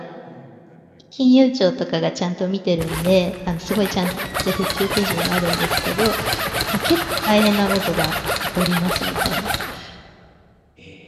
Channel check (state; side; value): identical; both; correlation 1.00